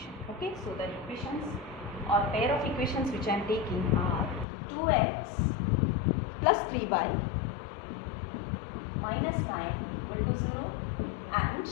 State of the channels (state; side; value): drops out; right; at 4.5 s